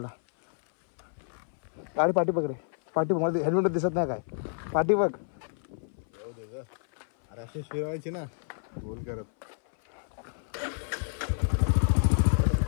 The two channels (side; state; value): right; silent; 58 dB below the other